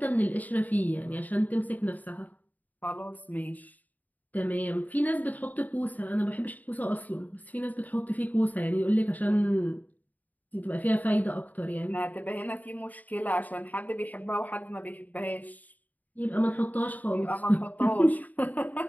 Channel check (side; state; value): right; late; 0.079 ms